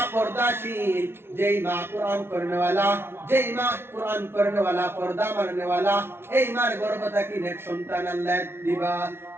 পর্দাশীল, যেই মা কোরআন পড়নেওয়ালা, পর্দা মাননেওয়ালা, এই মার গর্ভ থাকি নেক সন্তান আল্লাহ দিবা।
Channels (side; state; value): left; late; 0.12 ms